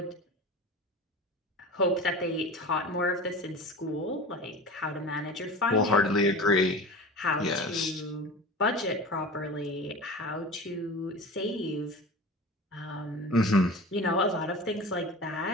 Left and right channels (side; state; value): both; normal; correlation 0.33